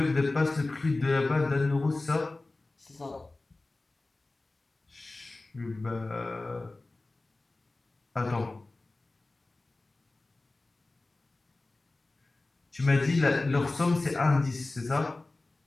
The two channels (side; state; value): right; quieter; 3.1 dB